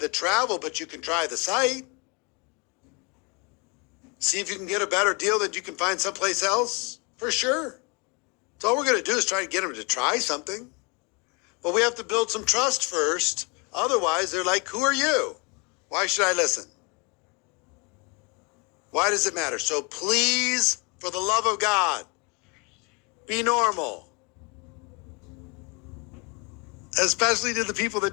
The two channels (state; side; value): quieter; right; 30.9 dB